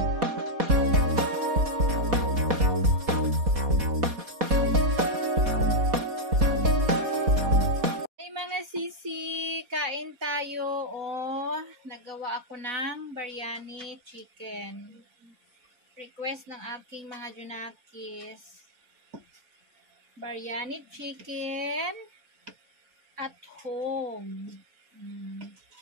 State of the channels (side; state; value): left; late; 4.0 ms